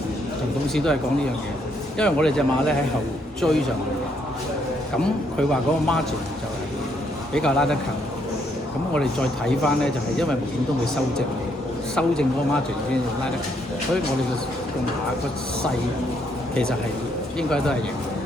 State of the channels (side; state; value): both; normal; correlation 0.72